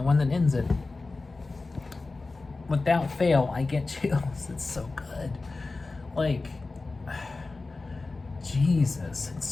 one that ends it, without fail I get chills. It's so good. Like, Jesus,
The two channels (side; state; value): right; quieter; 3.6 dB